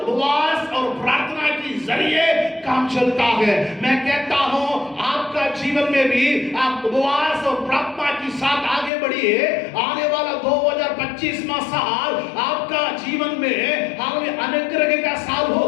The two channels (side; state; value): right; drops out; at 8.9 s